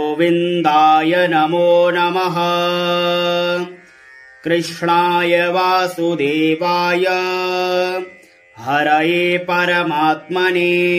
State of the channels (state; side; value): identical; both; correlation 1.00